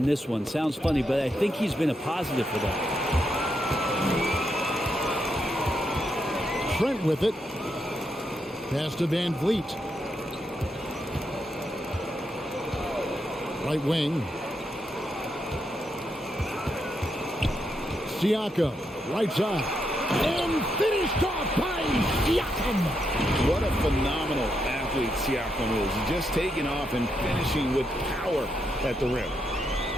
this one. Sounds funny, but I think he's been a positive for them. Trent with it. Pass to Van Vliet. Right wing. Siakam, right side. And finished off by Siakam. What a phenomenal athlete Siakam is. Just taking off and finishing with power at the rim.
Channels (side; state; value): both; normal; correlation 0.81